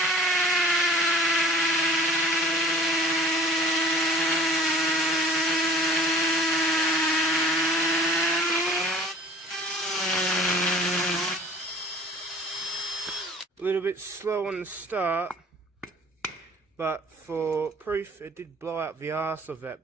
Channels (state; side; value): normal; both; correlation 0.48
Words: A little bit slow on the start, but for proof, it did blow out the arse of